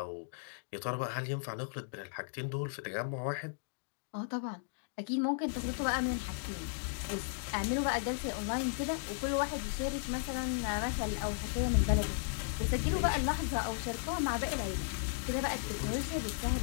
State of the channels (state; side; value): silent; right; digital silence